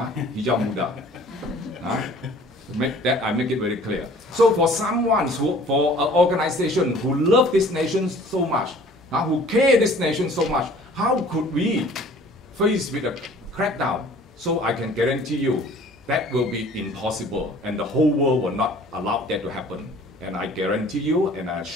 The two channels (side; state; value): both; normal; correlation 0.51